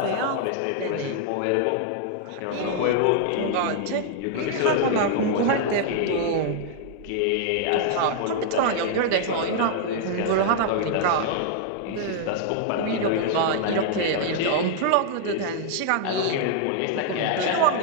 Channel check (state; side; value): different; both; correlation -0.01